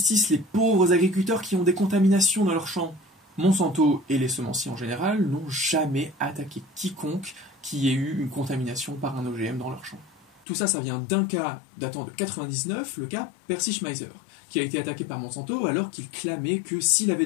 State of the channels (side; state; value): right; drops out; at 10.4 s